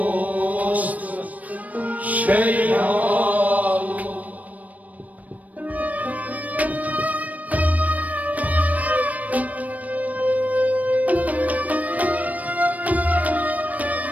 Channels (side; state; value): left; late; 0.072 ms